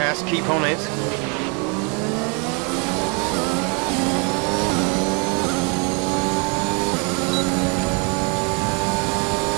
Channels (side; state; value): left; quieter; 34.3 dB